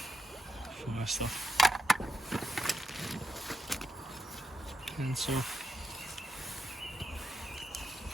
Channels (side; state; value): both; normal; correlation 0.84